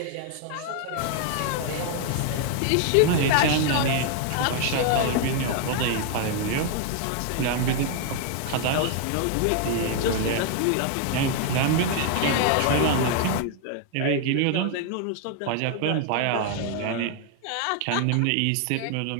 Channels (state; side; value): different; both; correlation 0.00